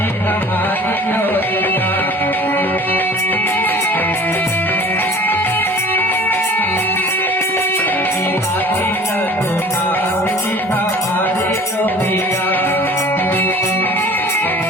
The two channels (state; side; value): normal; both; correlation 0.46